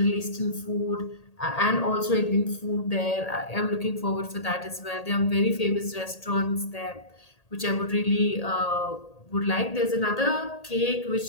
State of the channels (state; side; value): late; right; 1.8 ms